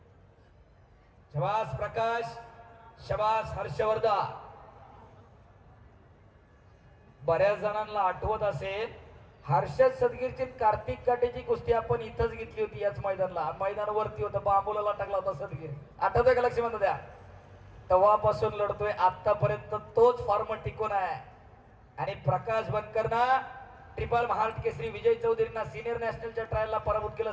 शाबास प्रकाश शाबास हर्षवर्धन बऱ्याच जणांना आठवत असेल हर्षद सदगीरची कार्तिक काटेची कुस्ती आपण इथंच घेतली होती याच मैदानावरती होतं बांबुलाला टाकला होता सदगीर आठवतोय का लक्ष्मण द्या तेव्हापासून लढतोय आतापर्यंत तोच फॉर्म टिकून आहे आणि प्रकाश बनकरना ट्रिपल महाराष्ट्र केसरी विजय चौधरींना सिनियर नॅशनलच्या ट्रायलला पराभूत केलं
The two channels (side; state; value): both; identical; correlation 1.00